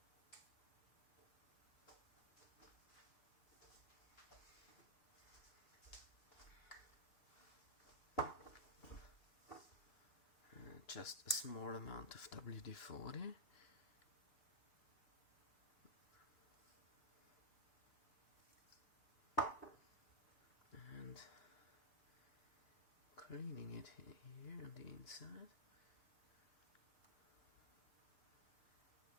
Just a small amount of WD-40. And cleaning it here on the inside.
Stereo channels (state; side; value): late; right; 2.6 ms